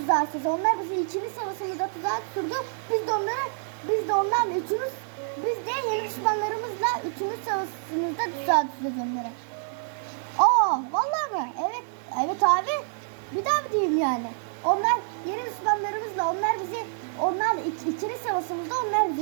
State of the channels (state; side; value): silent; left; digital silence